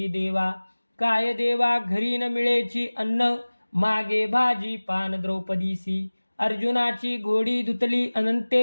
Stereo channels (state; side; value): inverted; both; correlation -1.00